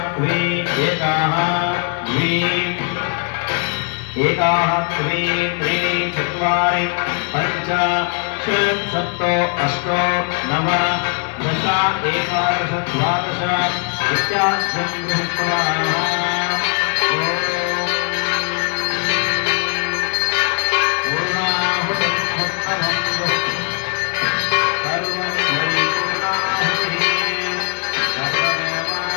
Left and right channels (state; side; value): quieter; right; 38.8 dB